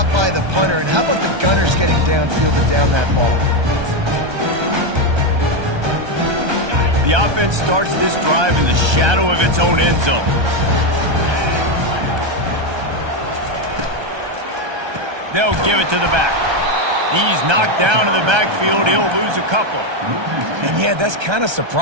by the punter. And how about the Gunners getting downfield to down that ball? The offense starts this drive in the shadow of its own end zone. They'll give it to the back. He's knocked down in the backfield. He'll lose a couple. And yeah, that's kind of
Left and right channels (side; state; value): left; late; 1.3 ms